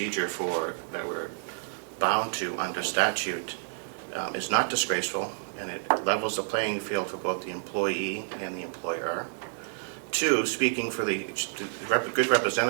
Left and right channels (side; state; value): left; silent; digital silence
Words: that we're bound to under statute is not disgraceful, and it levels the playing field for both the employee and the employer. Two, speaking for the good